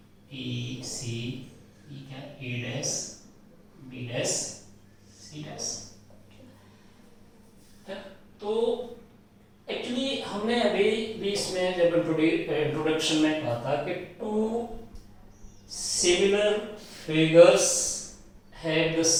B C, ये क्या A dash B dash C dash. तो एक्चुअली हमने अभी भी इसमें जब इंट्रोडक्शन में कहा था कि two similar figures have the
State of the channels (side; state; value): both; identical; correlation 1.00